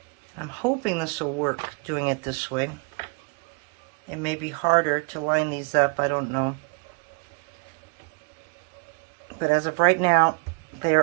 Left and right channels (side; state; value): left; quieter; 34.3 dB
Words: I'm hoping this will work doing it this way. It may be harder to line these up, I don't know. But as of right now, they